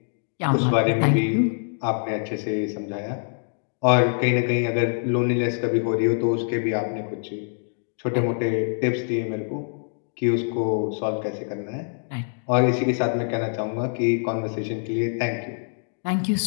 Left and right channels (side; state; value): right; silent; digital silence